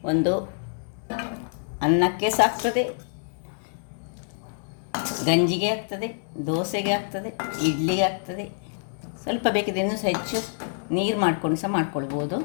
ಒಂದು ಅನ್ನಕ್ಕೆ ಸಾಕ್ತದೆ, ಗಂಜಿಗೆ ಆಗ್ತದೆ, ದೋಸೆಗೆ ಆಗ್ತದೆ, ಇಡ್ಲಿಗೆ ಆಗ್ತದೆ. ಸ್ವಲ್ಪ ಬೇಕಿದ್ರೆ ಇನ್ನೂ ಸಹ ಹೆಚ್ಚು ನೀರು ಮಾಡ್ಕೊಂಡು ಸಹ ಮಾಡ್ಕೊಳ್ಬೋದು.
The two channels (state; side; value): silent; right; digital silence